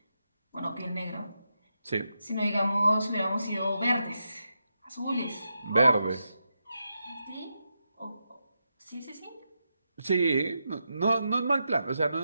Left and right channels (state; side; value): inverted; both; correlation -0.86